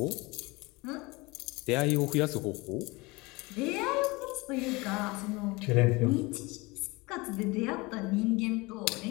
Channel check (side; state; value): right; quieter; 24.0 dB